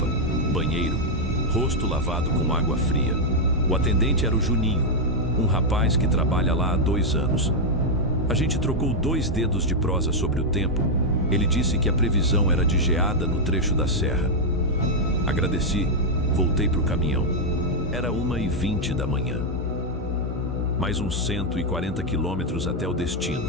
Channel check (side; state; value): both; normal; correlation -0.01